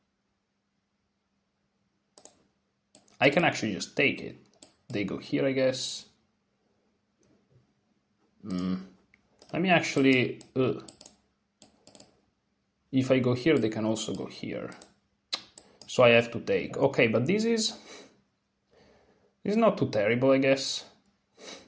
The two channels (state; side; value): identical; both; correlation 1.00